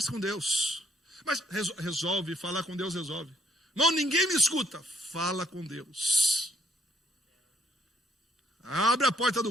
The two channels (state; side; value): normal; both; correlation 0.67